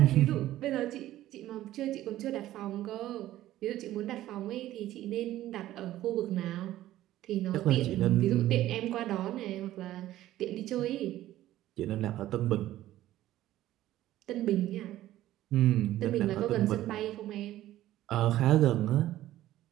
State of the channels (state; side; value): quieter; left; 14.2 dB